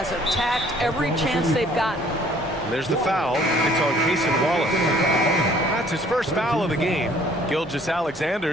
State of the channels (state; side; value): normal; both; correlation 0.57